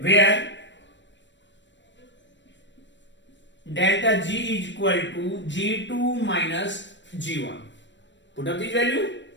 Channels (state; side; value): late; right; 0.53 ms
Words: Where delta G is equal to G2 minus G1, put up this value,